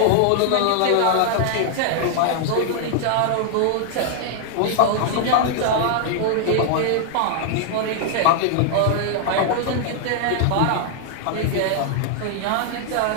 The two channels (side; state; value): both; different; correlation -0.01